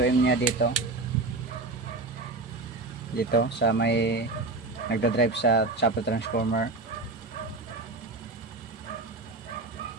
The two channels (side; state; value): left; quieter; 3.4 dB